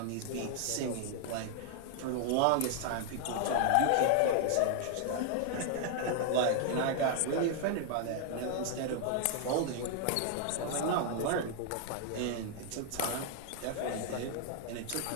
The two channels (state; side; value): different; both; correlation 0.00